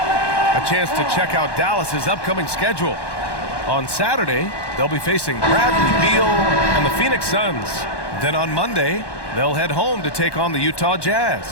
A chance to check out Dallas's upcoming schedule. On Saturday, they'll be facing Bradley Beal and the Phoenix Suns. Then on Monday, they'll head home to take on the Utah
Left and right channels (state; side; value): late; right; 1.1 ms